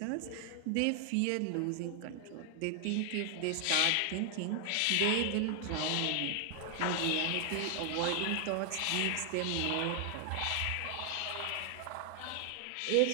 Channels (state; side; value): different; both; correlation 0.00